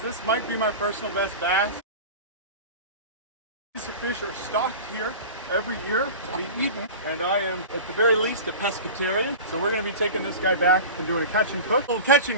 This might be my personal best bass. These fish are stocked here every year to be eaten, and I am at the very least a pescatarian. So we're going to be taking this guy back and doing a catch and cook. A little catch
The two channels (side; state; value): both; inverted; correlation -0.32